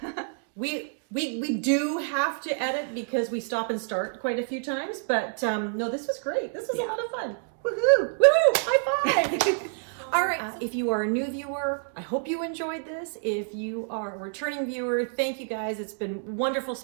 we do have to edit because we stop and start quite a few times, but no, this was great. This was a lot of fun. Woohoo! Woohoo! High five! All right, if you are a new viewer, I hope you enjoyed this. If you are a returning viewer, thank you guys. It's been wonderful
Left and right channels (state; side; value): silent; left; digital silence